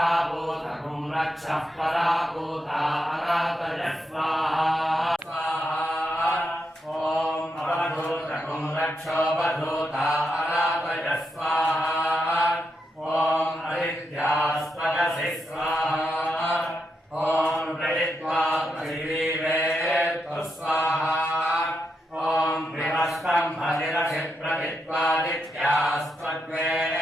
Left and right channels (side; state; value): both; normal; correlation 0.83